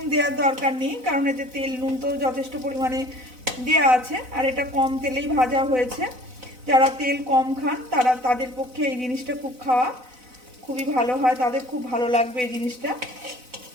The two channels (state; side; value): late; left; 4.0 ms